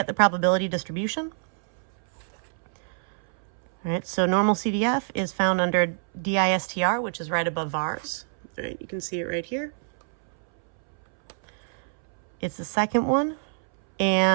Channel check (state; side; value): silent; left; 61 dB below the other